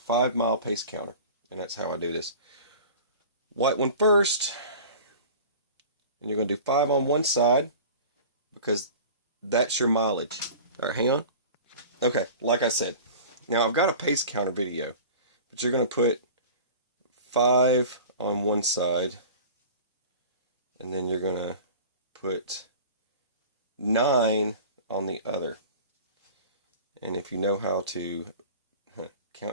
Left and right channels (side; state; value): both; inverted; correlation -0.39